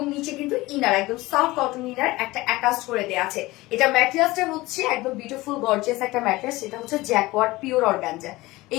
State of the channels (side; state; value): right; quieter; 19.8 dB